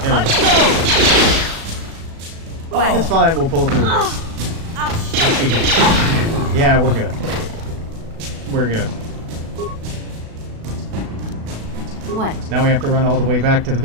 There we go. It's fine, we'll pull through this. Yeah, we're good. We're good. What? Now we have to run all the way back to the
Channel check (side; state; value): left; late; 36 ms